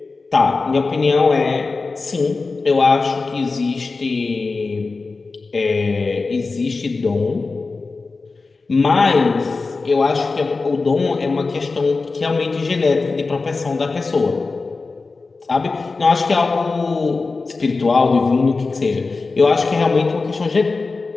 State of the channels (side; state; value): right; quieter; 3.9 dB